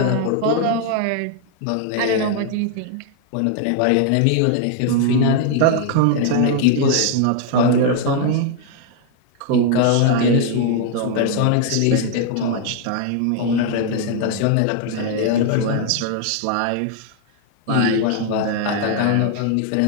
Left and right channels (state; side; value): different; both; correlation 0.00